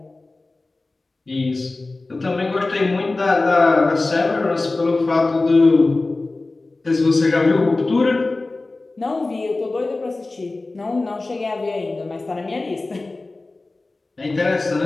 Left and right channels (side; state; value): right; quieter; 3.2 dB